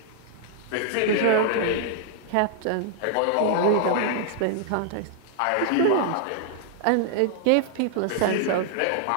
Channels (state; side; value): different; both; correlation 0.00